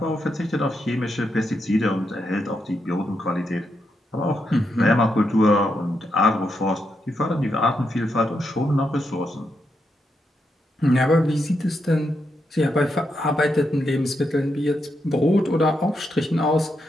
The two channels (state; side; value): normal; both; correlation 0.82